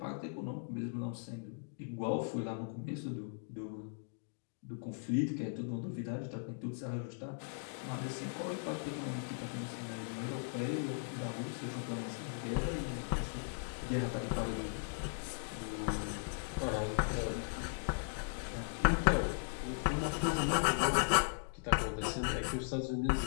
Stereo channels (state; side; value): silent; right; digital silence